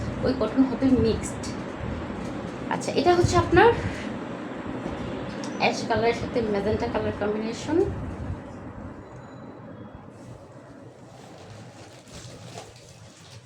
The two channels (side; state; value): both; identical; correlation 1.00